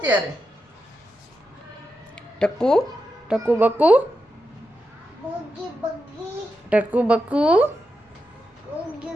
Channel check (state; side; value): normal; both; correlation 0.87